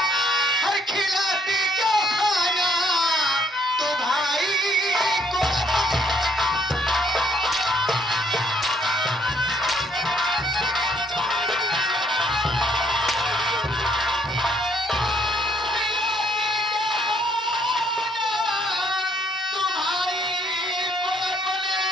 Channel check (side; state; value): both; normal; correlation 0.67